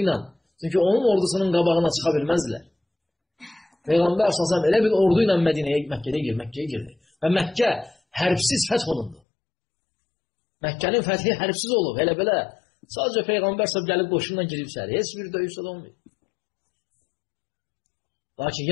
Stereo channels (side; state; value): right; drops out; at 9.2 s